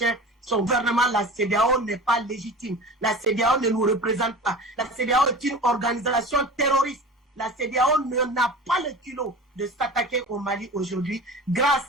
son gouvernement. La CEDEAO n'est pas légitime. La CEDEAO ne nous représente pas. La CEDEAO est une organisation terroriste. La CEDEAO n'a pas le culot de s'attaquer au Mali aujourd'hui grâce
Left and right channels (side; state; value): both; normal; correlation 0.36